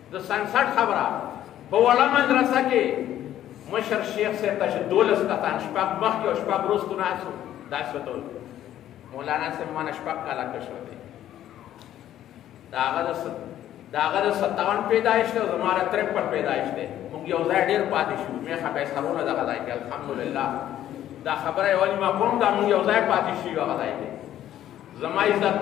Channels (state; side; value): quieter; right; 12.0 dB